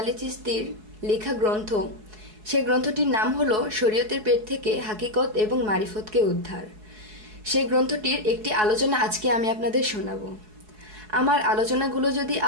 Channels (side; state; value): left; late; 4.7 ms